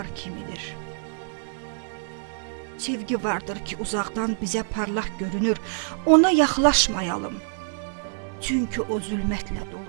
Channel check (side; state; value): left; silent; 56 dB below the other